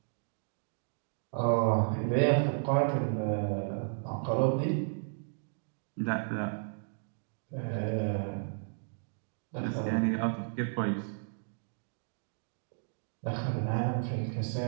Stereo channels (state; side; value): silent; left; digital silence